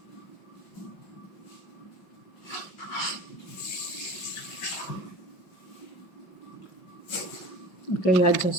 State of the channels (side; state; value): right; late; 5.4 ms